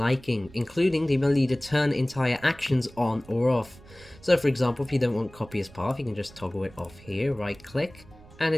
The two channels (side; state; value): right; noise; rumble, 22 dB below the sound